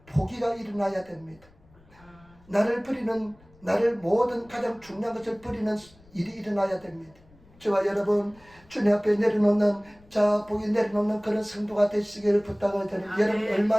포기가 일어나야 됩니다. 나를 모든 가장 중요한 것을 버리는 일이 일어나야 됩니다. 저와 여러분 주님 앞에 내려놓는 복이 내려놓는 그런 성도가 되시기를 부탁을 드립니다. 여러분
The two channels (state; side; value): noise; left; rumble, 27 dB below the sound